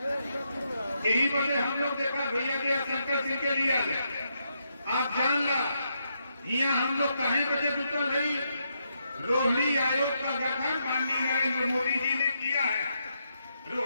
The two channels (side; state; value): both; inverted; correlation -0.80